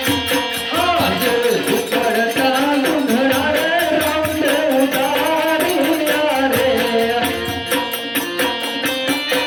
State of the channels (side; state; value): both; identical; correlation 1.00